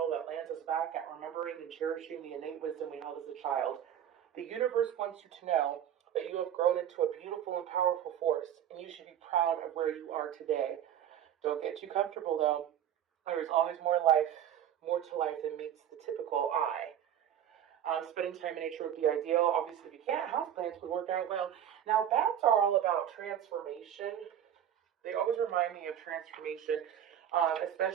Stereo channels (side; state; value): left; quieter; 10.1 dB